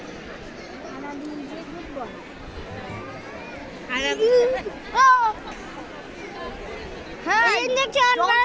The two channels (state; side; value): identical; both; correlation 1.00